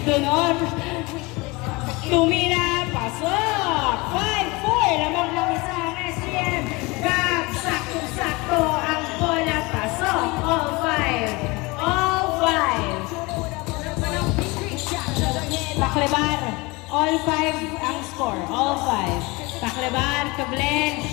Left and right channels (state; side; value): quieter; right; 24.7 dB